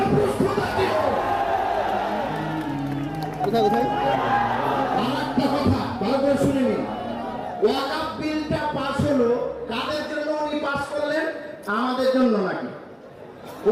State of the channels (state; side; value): identical; both; correlation 1.00